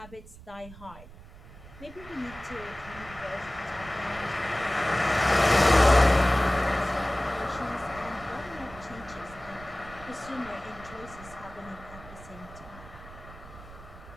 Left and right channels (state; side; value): noise; right; rumble, 18 dB below the sound